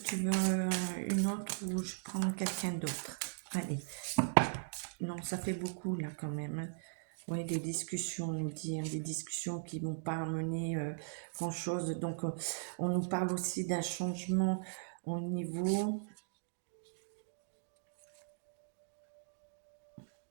veux une autre ou je prends quelqu'un d'autre? Allez. Non, ça fait beaucoup là quand même, hein. Oui, des discussions, on nous dit, hein, des discussions qui ne vont pas amener grand-chose. Donc, on nous parle aussi d'un changement au niveau...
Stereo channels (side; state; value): left; silent; digital silence